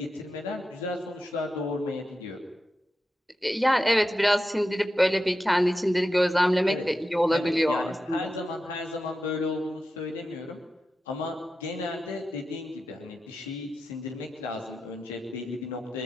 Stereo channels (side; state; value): both; normal; correlation 0.90